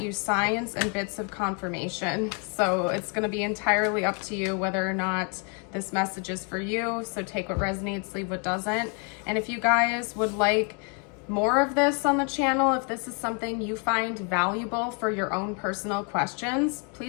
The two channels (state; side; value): quieter; right; 37.4 dB